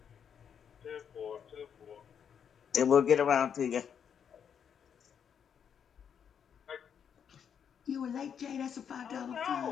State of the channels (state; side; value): quieter; right; 7.8 dB